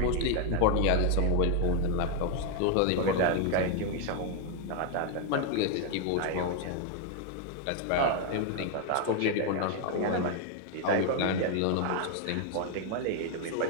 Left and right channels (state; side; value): different; both; correlation 0.01